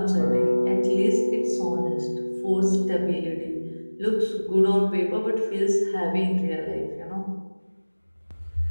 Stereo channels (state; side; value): inverted; both; correlation -1.00